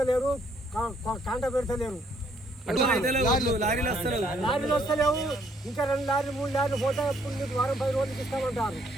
కాంట పెడతలేరు, లారీలు వస్తలేవు. ఇంకా 2 లారీలు 3 లారీలు పోతే వారం 10 రోజులకి ఇస్తామంటారు.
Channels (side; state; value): both; normal; correlation 0.67